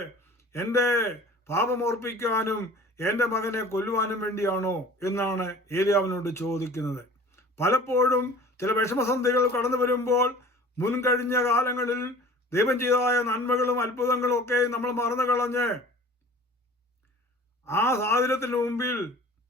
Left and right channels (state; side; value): normal; both; correlation 0.44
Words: എൻ്റെ പാപമോർപ്പിക്കാനും എൻ്റെ മകനെ കൊല്ലുവാനും വേണ്ടിയാണോ എന്നാണ് ഏലിയാവിനോട് ചോദിക്കുന്നത്. പലപ്പോഴും ചില വിഷമസന്ധികൾ കടന്നു വരുമ്പോൾ മുൻകഴിഞ്ഞ കാലങ്ങളിൽ ദൈവം ചെയ്തതായ നന്മകളും അത്ഭുതങ്ങളും ഒക്കെ നമ്മൾ മറന്നു കളഞ്ഞ് ആ സാഹചര്യത്തിന് മുമ്പിൽ